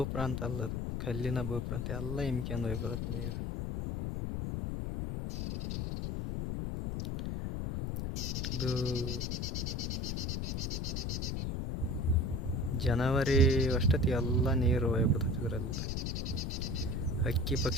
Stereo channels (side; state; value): left; noise; rumble, 1 dB below the sound